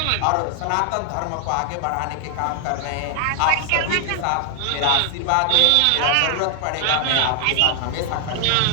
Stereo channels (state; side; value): different; both; correlation 0.00